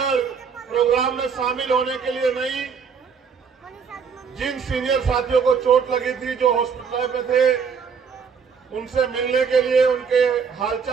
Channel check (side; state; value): left; quieter; 6.1 dB